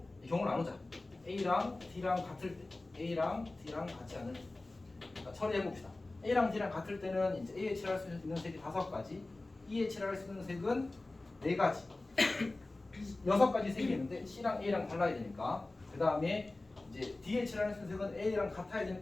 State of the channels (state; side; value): quieter; right; 3.0 dB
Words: 경우를 나누자. A랑 D랑 같을 때, A랑 D랑 같지 않을 때. 그러니까 처리해봅시다. A랑 D랑 같을 때는 이제 A에 칠할 수 있는 색이 5가지, E에 칠할 수 있는 색은 4가지, 6가지 색이 있는데 C랑 A랑 달라야 되니까. 그 다음에 이제 D에 칠할 수 있는 색은 A랑 같아야